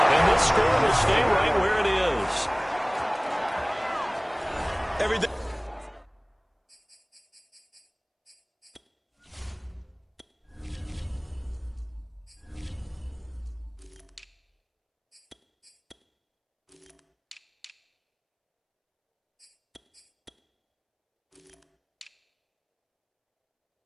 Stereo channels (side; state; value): both; identical; correlation 1.00